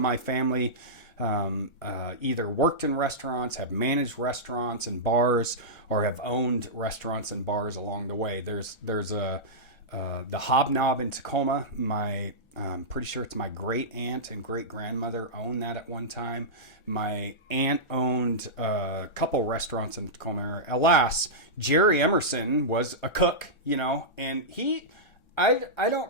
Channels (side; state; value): right; late; 1.3 ms